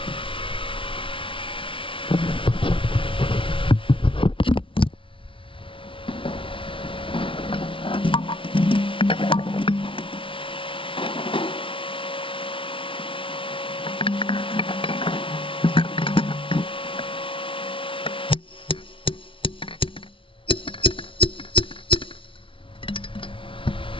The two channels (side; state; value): right; late; 0.25 ms